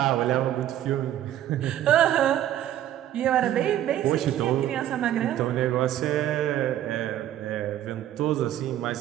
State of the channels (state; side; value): quieter; left; 12.0 dB